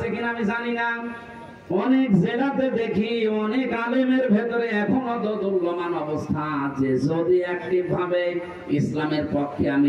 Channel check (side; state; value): both; identical; correlation 1.00